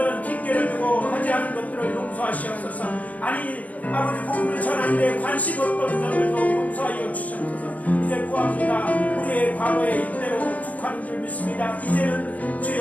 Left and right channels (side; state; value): right; late; 0.073 ms